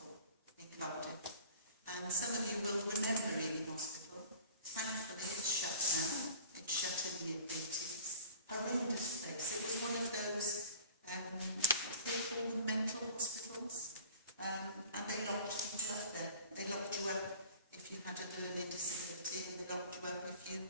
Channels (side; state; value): both; inverted; correlation -0.45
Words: in Cardiff. And some of you will remember Hijinx Hospital. Thankfully, it's shut now. It shut in the 80s. Horrendous place. It was one of those, they call them mental hospitals. And they locked people up there. They locked you up if you had a learning disability, and they locked you up if you